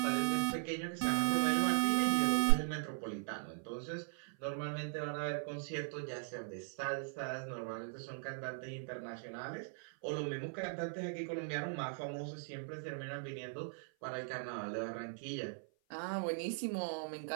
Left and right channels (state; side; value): silent; left; 52 dB below the other